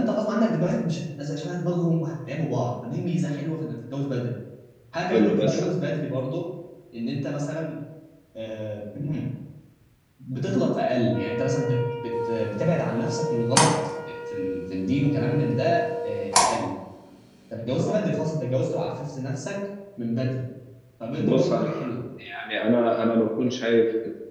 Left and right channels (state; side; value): identical; both; correlation 1.00